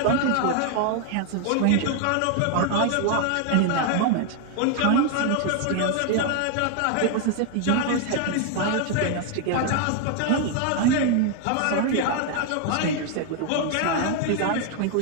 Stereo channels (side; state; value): both; different; correlation 0.00